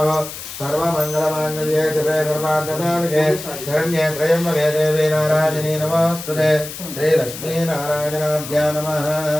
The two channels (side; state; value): left; noise; hiss, 11 dB below the sound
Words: సర్వమంగళమాంగళ్యే శుభే సర్వార్థసాధకే శరణ్యే త్రయంబకే దేవీ నారాయణీ నమోస్తుతే. శ్రీలక్ష్మీనారాయణాభ్యా నమః.